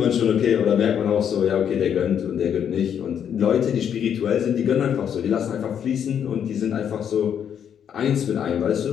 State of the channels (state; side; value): quieter; right; 8.6 dB